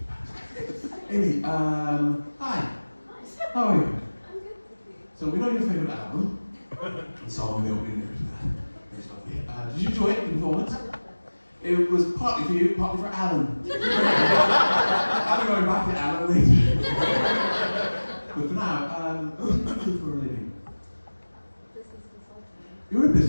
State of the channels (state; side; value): inverted; both; correlation -1.00